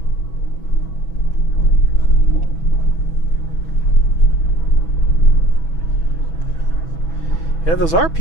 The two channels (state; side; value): late; right; 6.1 ms